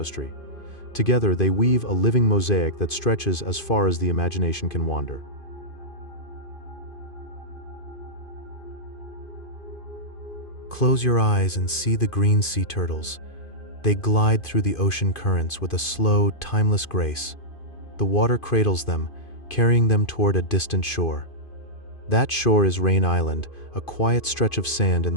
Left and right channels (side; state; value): right; late; 2.5 ms